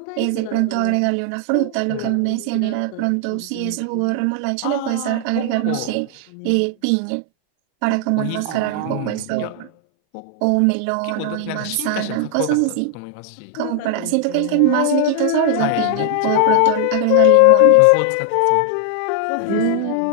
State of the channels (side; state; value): both; different; correlation 0.00